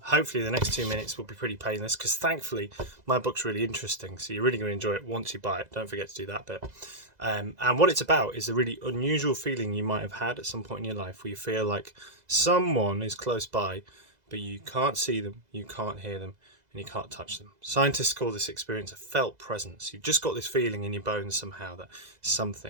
Hopefully the next 2 minutes will be pretty painless because thankfully my book's really interesting, so you're really going to enjoy it once you buy it. Don't forget to do that bit. And what it's about is a really unusual feeling you might have had at some point in your life where you feel like someone is close by, but you can't see them, you can't hear them, and you can't touch them. Scientists call this experience a felt presence. You've just got this feeling in your bones somehow that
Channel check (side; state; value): left; late; 2.0 ms